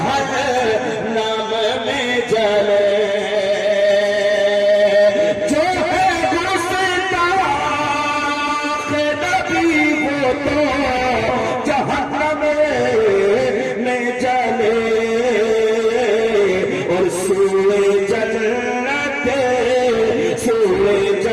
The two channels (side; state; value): both; identical; correlation 1.00